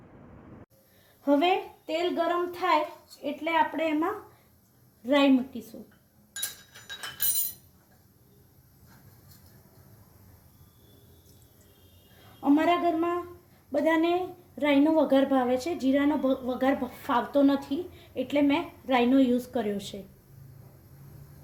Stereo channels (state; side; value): identical; both; correlation 1.00